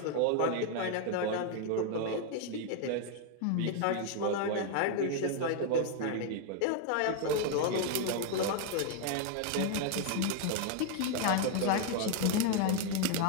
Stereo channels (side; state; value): both; different; correlation 0.00